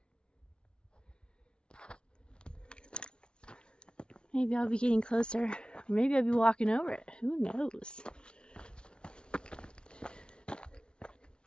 Maybe I'll be getting closer, or maybe I'll be walking over it. Who knows?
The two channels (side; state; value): right; late; 0.056 ms